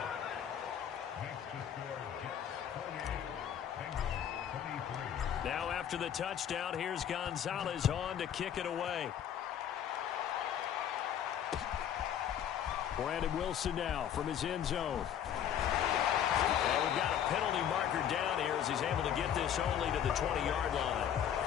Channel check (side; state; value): right; quieter; 9.5 dB